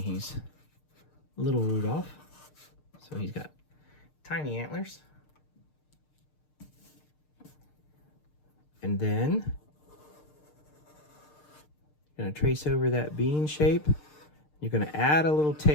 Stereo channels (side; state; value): right; late; 6.6 ms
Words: little Rudolph, so he's got tiny antlers. And then you're going to trace over that bean shape. You're going to add a little